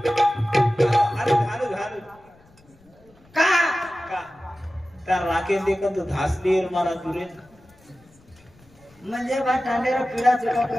हालू हालू हालू का का त्या राखेल देखत धासलीर मला दुरे म्हणजे बा टांडेरा पिढा चुका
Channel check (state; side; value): noise; left; rumble, 29 dB below the sound